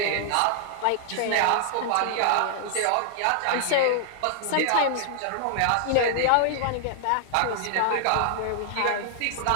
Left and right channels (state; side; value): different; both; correlation -0.01